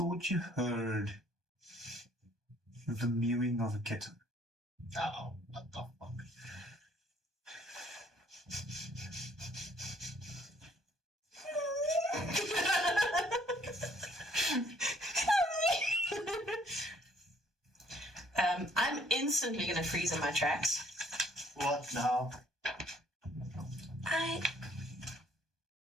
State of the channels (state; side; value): late; left; 1.2 ms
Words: you heard the mewing of a kitten. Oh, what the fuck? I'm instantly going to freeze in my tracks. What now? I